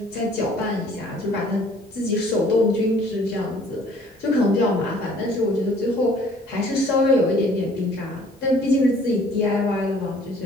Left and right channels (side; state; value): both; normal; correlation 0.56